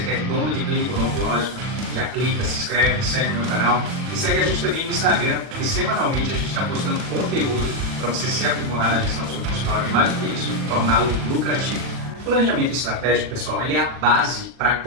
é dono de clínica odontológica, já clica, se inscreve, segue o meu canal e segue a gente também no Instagram, porque semanalmente a gente está postando conteúdo para você se aprimorar na gestão do seu consultório e mais do que isso, torná-lo lucrativo. O planejamento estratégico, pessoal, ele é a base para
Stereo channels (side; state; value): left; late; 40 ms